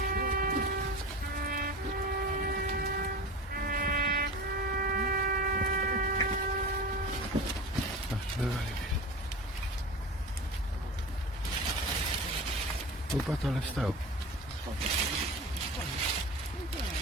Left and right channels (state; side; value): normal; both; correlation 0.32